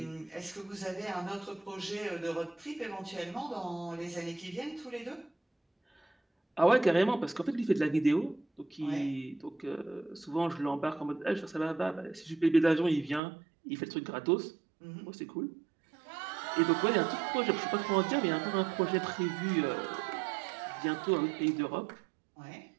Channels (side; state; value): left; drops out; at 13.2 s